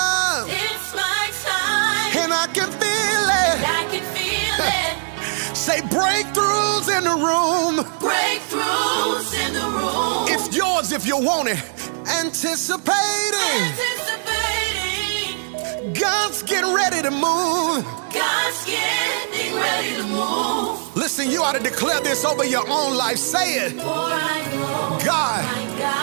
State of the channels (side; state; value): left; silent; digital silence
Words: It's my time. And I can feel it. I can feel it. Say, breakthroughs in the room. Breakthroughs in the room. It's yours if you want it. Anticipating. God's getting ready to move. God's getting ready to move. Listen, you ought to declare this over your own life. Say it. For I know God,